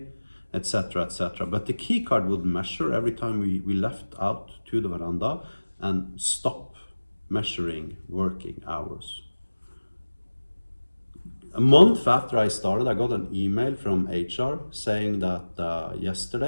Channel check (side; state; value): both; inverted; correlation -1.00